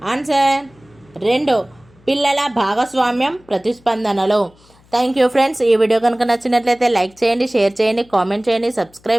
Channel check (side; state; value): left; noise; hum, 30 dB below the sound